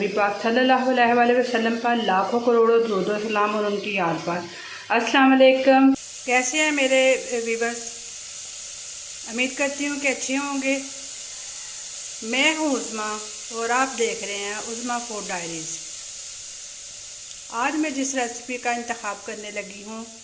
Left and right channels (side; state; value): both; identical; correlation 1.00